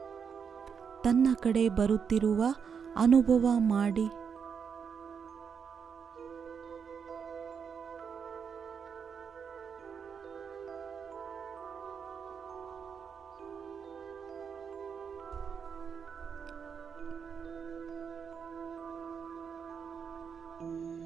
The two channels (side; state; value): left; quieter; 6.6 dB